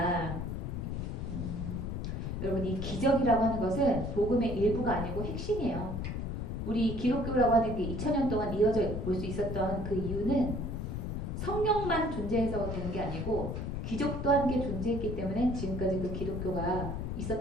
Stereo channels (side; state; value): left; noise; rumble, 3 dB below the sound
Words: 여러분 이 기적이라고 하는 것은 복음의 일부가 아니고 핵심이에요. 우리 기독교라고 하는 게 2000년 동안 이어져 올 수 있었던 그 이유는 성령만 존재해서 되는 게 아니고 기적도 함께 존재했기 때문에 지금까지 그 기독교가